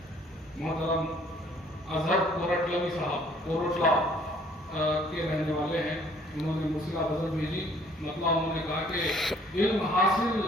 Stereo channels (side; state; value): both; normal; correlation 0.59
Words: محترم اظہر کورٹلوی صاحب کوروٹلا کے رہنے والے ہیں، انہوں نے مرسلہ غزل بھیجی، مطلب انہوں نے کہا کہ علم حاصل